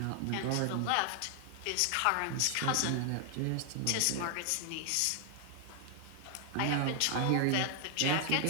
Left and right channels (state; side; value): different; both; correlation 0.00